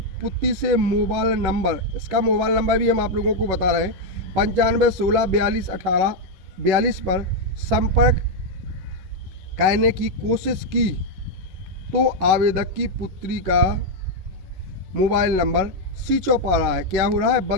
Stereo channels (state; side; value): late; left; 11 ms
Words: पुत्री से मोबाइल नंबर, इसका मोबाइल नंबर भी हम आप लोगों को बता रहे हैं, 95 16 42 18 42 पर संपर्क करने की कोशिश की, तो आवेदक की पुत्री का मोबाइल नंबर स्विच ऑफ आ रहा है, क्या हो रहा है,